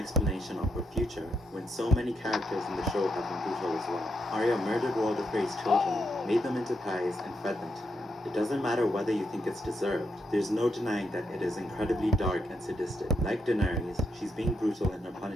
of her future when so many characters in the show have been brutal as well. Arya murdered Walder Frey's children, made them into pies, and fed them to him. It doesn't matter whether you think it's deserved. There's no denying that it is incredibly dark and sadistic. Like Daenerys, she's being brutal in her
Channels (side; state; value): both; normal; correlation 0.80